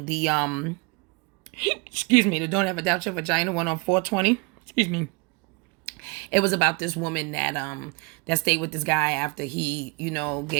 the, the Don't Ever Doubt Your Vagina one on 420, it was about this woman that stayed with this guy after he,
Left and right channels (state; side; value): quieter; left; 28.5 dB